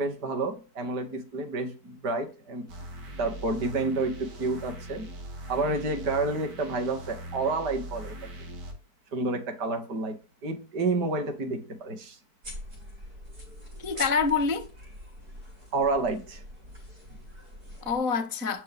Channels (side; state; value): left; late; 4.6 ms